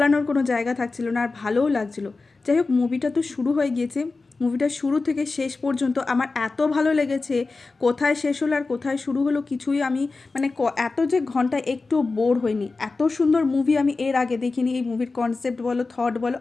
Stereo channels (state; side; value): quieter; right; 3.8 dB